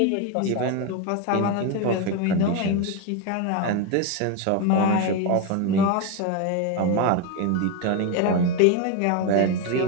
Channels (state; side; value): different; both; correlation 0.02